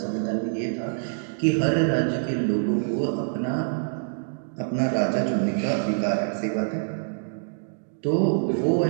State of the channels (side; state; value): left; silent; digital silence